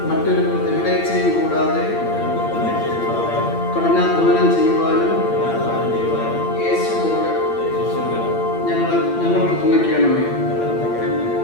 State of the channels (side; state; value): right; late; 8.7 ms